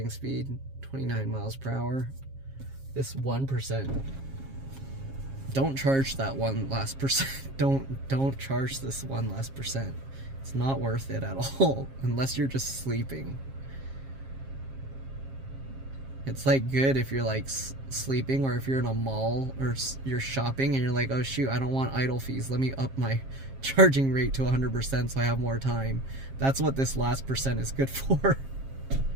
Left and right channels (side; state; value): left; late; 7.4 ms